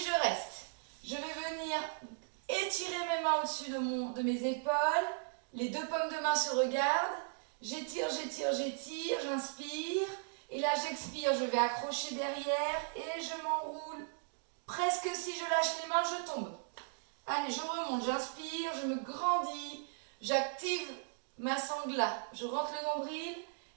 reste. Je vais venir étirer mes mains au-dessus de mes épaules. Les deux paumes de main se regardent. J'étire, j'étire, j'étire, j'inspire. Et là, j'expire, je vais accrocher derrière et je m'enroule. Presque si je lâche les mains, je tombe. Allez, je remonte, j'inspire, je me grandis, j'active ma sangle, je rentre le nombril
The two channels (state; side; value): silent; left; digital silence